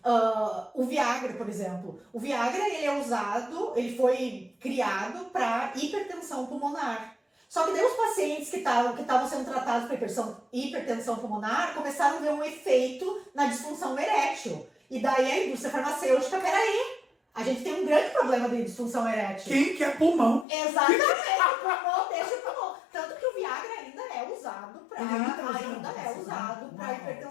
o Viagra, por exemplo. O Viagra, ele é usado, ele foi criado para hipertensão pulmonar. Só que daí os pacientes que estavam sendo tratados para hipertensão pulmonar começaram a ver um efeito na disfunção erétil. E daí a indústria farmacêutica, peraí, a gente tem um grande problema de disfunção erétil. Quem quer pulmão? Exatamente, o pulmão deixa o pulmão. Tanto que o Viagra ainda é usado para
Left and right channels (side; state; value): right; drops out; at 20.5 s